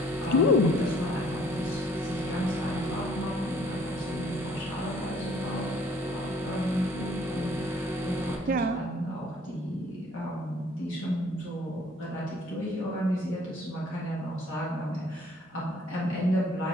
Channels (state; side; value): normal; both; correlation 0.58